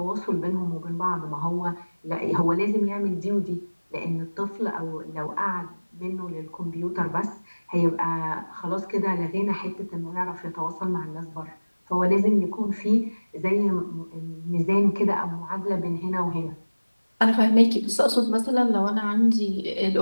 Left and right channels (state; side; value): inverted; both; correlation -1.00